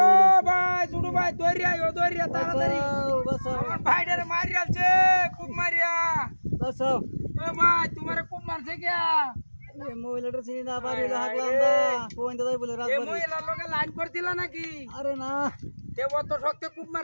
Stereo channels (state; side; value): inverted; both; correlation -1.00